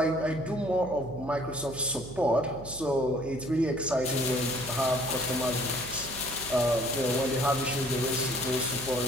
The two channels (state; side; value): noise; right; hum, 14 dB below the sound